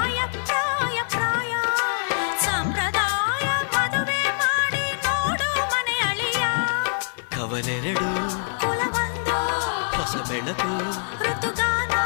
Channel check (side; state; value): right; silent; digital silence